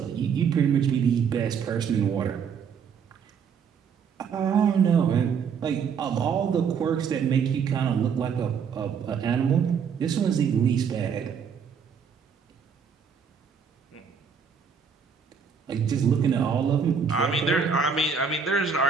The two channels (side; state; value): left; quieter; 6.6 dB